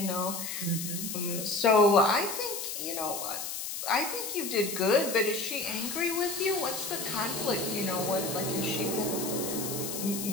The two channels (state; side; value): noise; left; hiss, 5 dB below the sound